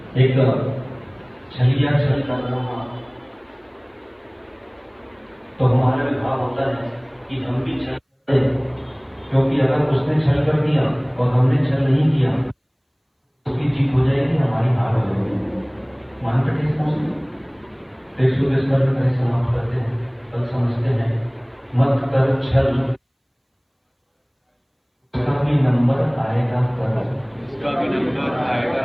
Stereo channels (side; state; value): both; identical; correlation 1.00